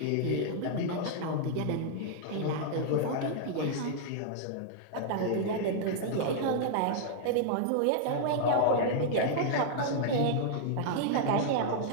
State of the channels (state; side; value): different; both; correlation -0.01